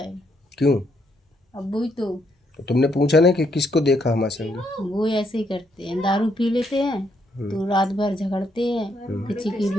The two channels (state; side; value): normal; both; correlation 0.74